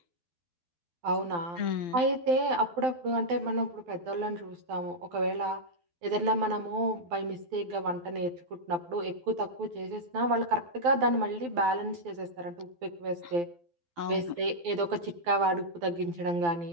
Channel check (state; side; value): late; left; 12 ms